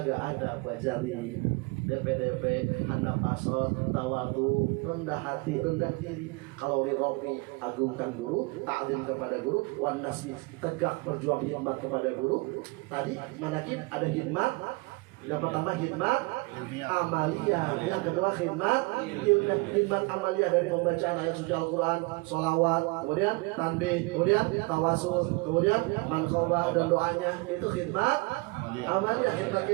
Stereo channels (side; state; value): left; quieter; 27.0 dB